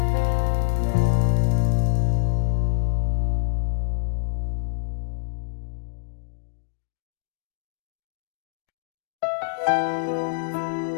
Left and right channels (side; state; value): right; silent; digital silence